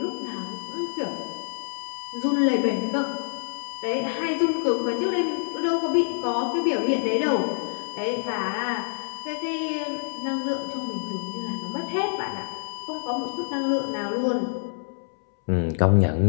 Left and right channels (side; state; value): right; silent; 61 dB below the other